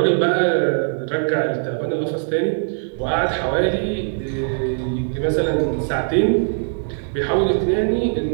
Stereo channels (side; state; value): left; silent; digital silence